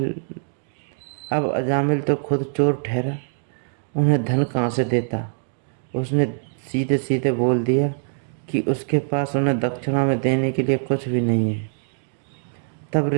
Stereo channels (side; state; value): left; silent; digital silence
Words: अजामिल तो खुद चोर ठहरा, उन्हें धन कहाँ से देता। उसने सीधे सीधे बोल दिया कि उसके पास उन्हें दक्षिणा में देने के लिए कुछ भी नहीं है। तब